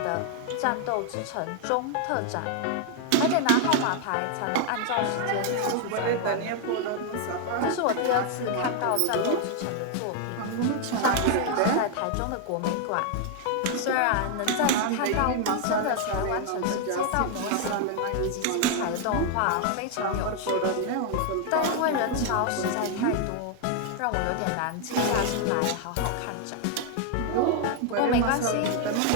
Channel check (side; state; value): both; different; correlation 0.00